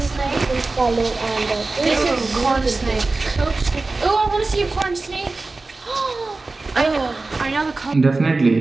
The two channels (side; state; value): left; quieter; 3.5 dB